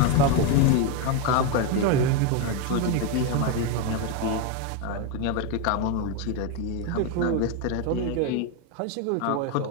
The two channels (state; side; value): different; both; correlation 0.02